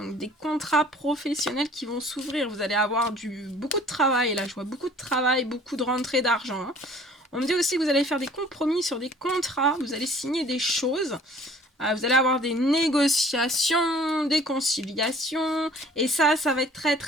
des contrats professionnels qui vont s'ouvrir. Vous allez avoir beaucoup de travail. Là, je vois beaucoup de travail, beaucoup de rentrée d'argent. Hein. On me dit aussi que vous allez faire des compromis sur des contrats. Vous allez signer des choses. Vous allez avoir des négociations, des conciliations. Et ça va être très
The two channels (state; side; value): normal; both; correlation 0.52